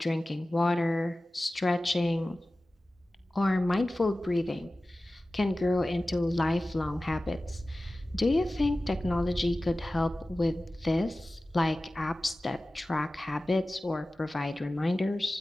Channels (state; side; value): normal; both; correlation 0.96